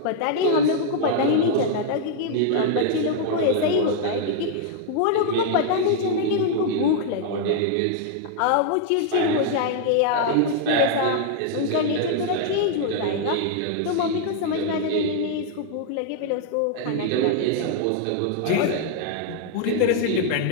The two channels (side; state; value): both; different; correlation 0.00